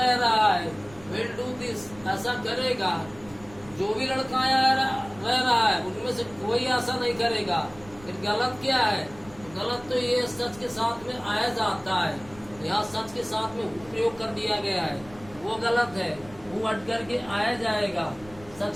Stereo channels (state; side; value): noise; right; rumble, 22 dB below the sound